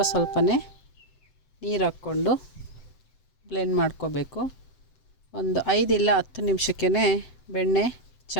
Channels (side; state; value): right; late; 7.9 ms